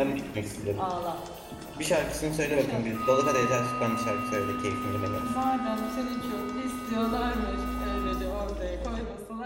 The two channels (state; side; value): identical; both; correlation 1.00